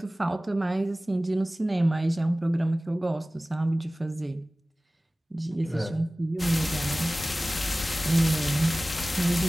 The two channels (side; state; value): both; normal; correlation 0.98